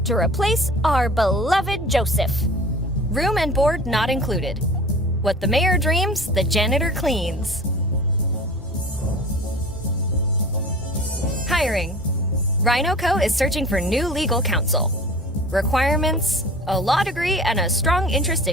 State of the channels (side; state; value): both; normal; correlation 0.41